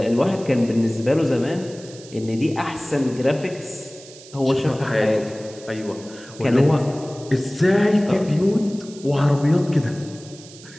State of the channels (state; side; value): noise; right; hiss, 19 dB below the sound